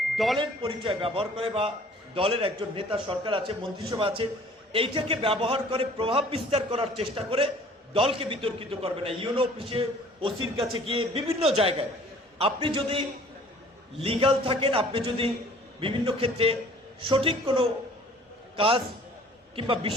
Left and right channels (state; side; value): normal; both; correlation 0.52